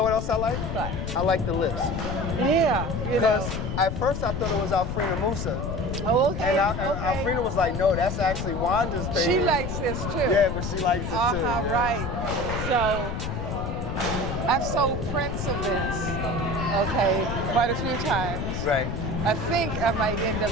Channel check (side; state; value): left; noise; rumble, 4 dB below the sound